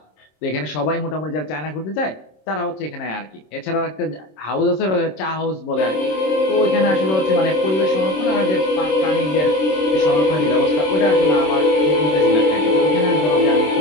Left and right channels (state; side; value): late; right; 26 ms